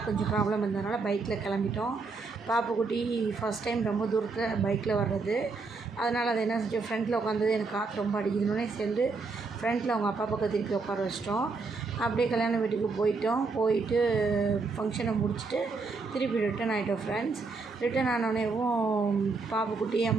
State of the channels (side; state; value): left; quieter; 4.2 dB